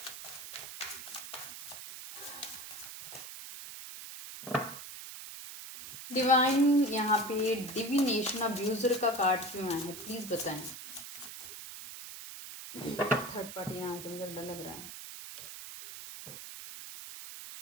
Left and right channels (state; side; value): noise; right; hiss, 11 dB below the sound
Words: डिवाइन यहाँ पे डिविनेशन अब्यूजर का कार्ड क्यों आया है, प्लीज बताएं। थर्ड पार्टी ना, जो मुझे डर लग रहा है।